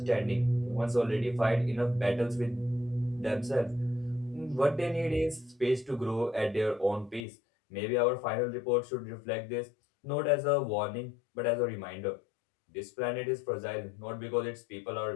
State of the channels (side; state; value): right; drops out; at 7.2 s